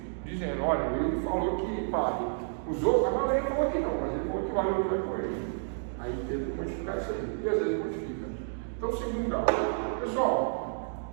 dizendo, olha, ele falou que vale. Os outros, a maioria falou que não, mas ele falou que vale o outro com ele. Aí teve que modificar isso aí, e às vezes modifica. Então, segundo grau. Pessoal,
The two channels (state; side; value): silent; left; digital silence